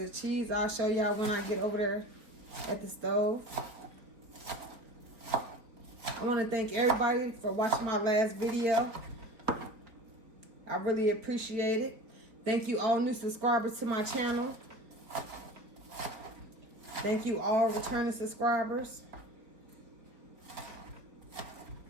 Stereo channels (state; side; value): late; left; 4.2 ms